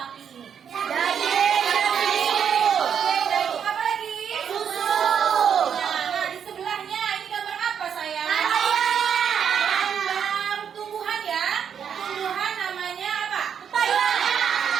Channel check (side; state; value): left; quieter; 7.9 dB